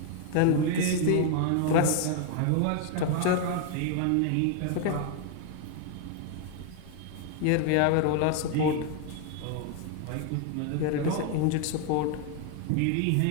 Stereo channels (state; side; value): different; both; correlation 0.00